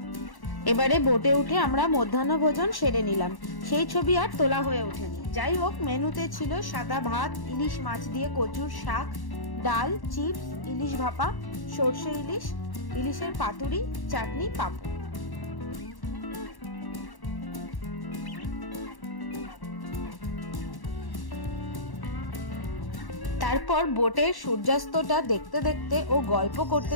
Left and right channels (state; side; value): late; right; 1.1 ms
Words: এবারে বোটে উঠে আমরা মধ্যাহ্ন ভোজন সেরে নিলাম। সেই ছবি আর তোলা হয়ে ওঠেনি। যাই হোক, মেনুতে ছিল সাদা ভাত, ইলিশ মাছ দিয়ে কচুর শাক, ডাল, চিপস, ইলিশ ভাপা, সর্ষে ইলিশ, ইলিশের পাতুরি, চাটনি, পাঁপড়। তারপর বোটের সূর্যাস্তটা দেখতে দেখতে ও গল্প করতে